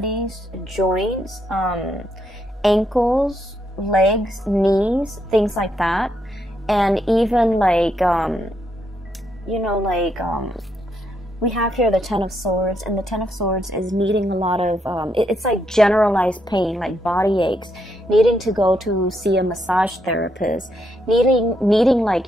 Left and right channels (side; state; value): both; normal; correlation 0.78